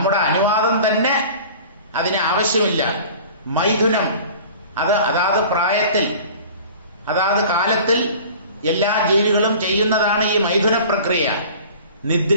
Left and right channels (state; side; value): inverted; both; correlation -0.43